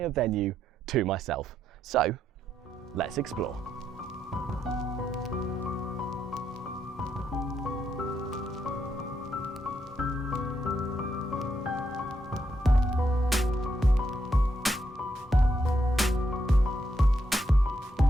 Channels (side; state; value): both; normal; correlation 0.79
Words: venue to myself. So, let's explore.